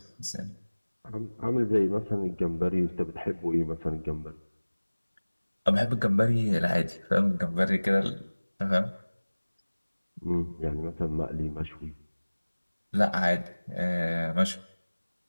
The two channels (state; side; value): inverted; both; correlation -1.00